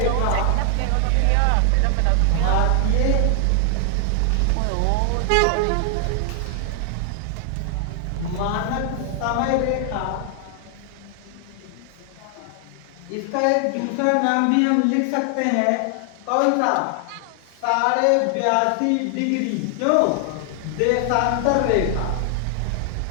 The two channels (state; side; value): different; both; correlation 0.00